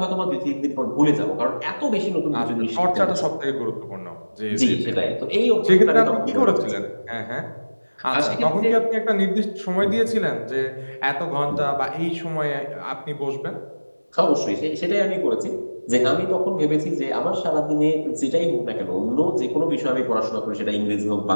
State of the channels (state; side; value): inverted; both; correlation -1.00